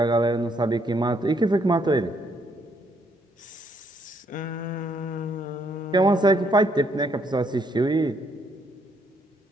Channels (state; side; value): normal; both; correlation 0.71